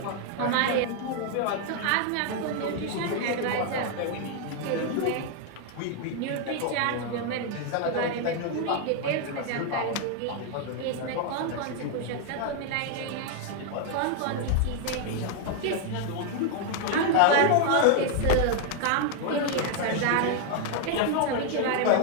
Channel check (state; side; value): different; both; correlation 0.00